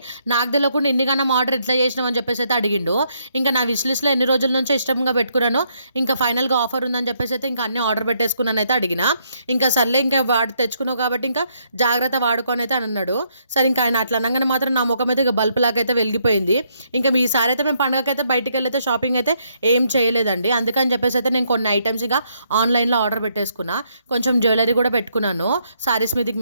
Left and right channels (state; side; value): inverted; both; correlation -0.73